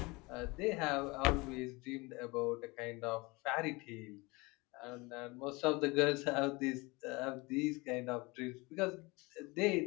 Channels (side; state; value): right; quieter; 24.9 dB